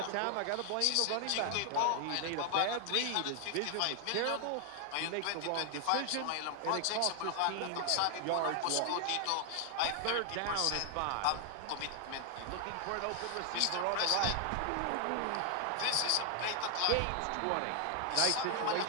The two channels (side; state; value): both; different; correlation 0.00